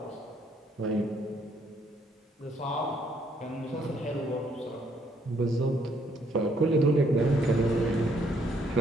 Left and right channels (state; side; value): normal; both; correlation 0.68